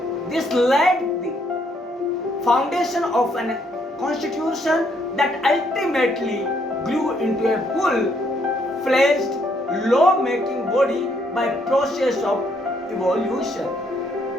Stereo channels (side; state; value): both; normal; correlation 0.71